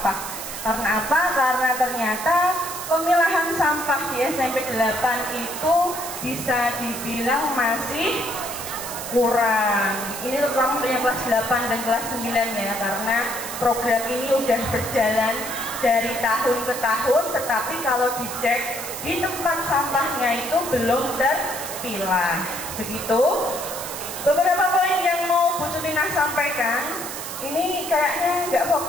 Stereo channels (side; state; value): right; noise; hiss, 8 dB below the sound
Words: Karena apa? Karena ternyata pemilahan sampah di SMP 8 itu bisa dibilang masih kurang. Ini terutama untuk yang kelas 8 dan kelas 9 ya, karena program ini udah berjalan dari tahun ke tahun, tetapi kalau dicek di tempat sampahnya itu belum terpilah. Begitu. Beberapa poin yang mau Bu Sutinah sampaikan, ini kayaknya nggak